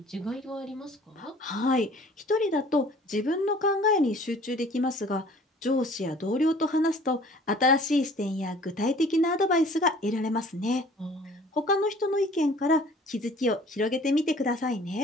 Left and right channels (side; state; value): both; normal; correlation 0.51